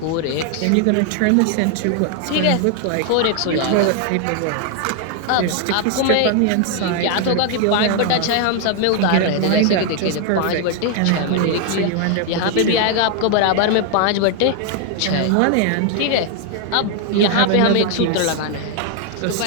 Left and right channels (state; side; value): different; both; correlation 0.00